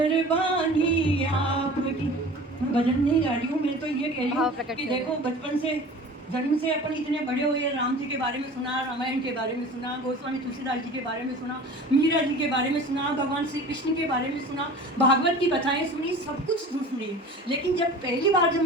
आपकी। मैं भजन नहीं गा रही हूँ, मैं तो ये कह रही हूँ कि देखो बचपन से, जन्म से अपन इतने बड़े हुए, राम जी के बारे में सुना, रामायण के बारे में सुना, गोस्वामी तुलसीदास जी के बारे में सुना, मीरा जी के बारे में सुना, भगवान श्री कृष्ण के बारे में सुना, भागवत की कथाएं सुनी, सब कुछ सुनी। लेकिन जब पहली बार जब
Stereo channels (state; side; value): normal; both; correlation 0.40